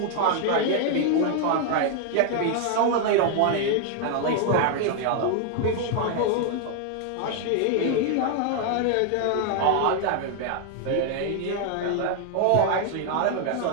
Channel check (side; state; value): both; different; correlation 0.00